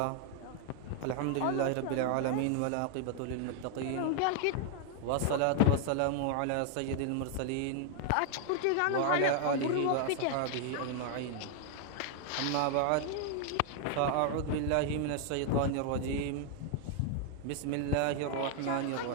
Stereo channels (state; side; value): different; both; correlation 0.00